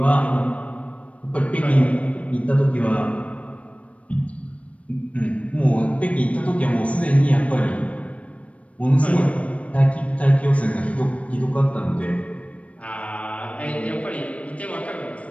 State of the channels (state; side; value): late; right; 0.064 ms